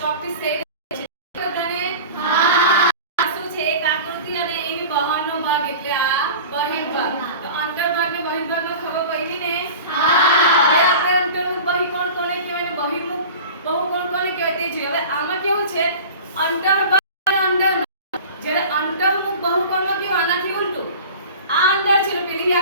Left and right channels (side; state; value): both; inverted; correlation -0.37